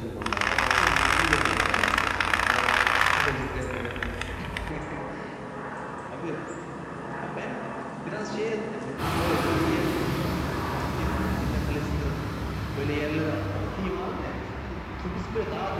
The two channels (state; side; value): identical; both; correlation 1.00